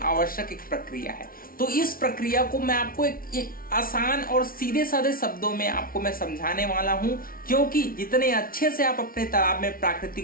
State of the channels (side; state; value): right; late; 0.43 ms